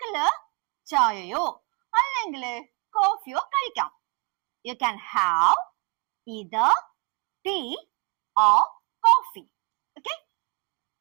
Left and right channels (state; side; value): quieter; left; 30.3 dB